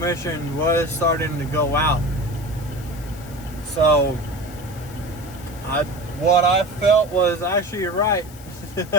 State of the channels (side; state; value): left; noise; hiss, 20 dB below the sound